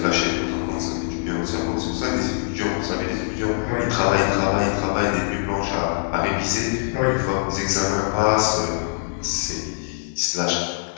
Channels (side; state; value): right; silent; digital silence